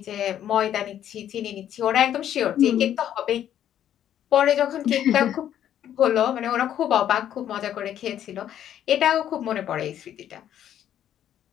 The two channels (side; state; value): right; quieter; 10.6 dB